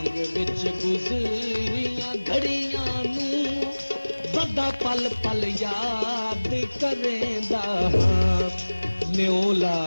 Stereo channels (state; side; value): inverted; both; correlation -1.00